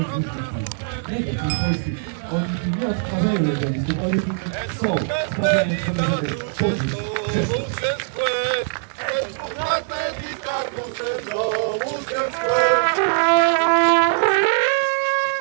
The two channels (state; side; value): silent; left; digital silence